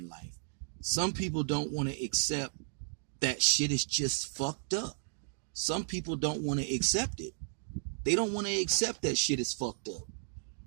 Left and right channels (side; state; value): left; silent; digital silence